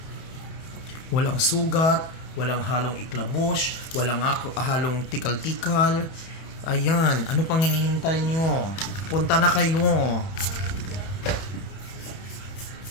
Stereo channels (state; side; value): late; right; 31 ms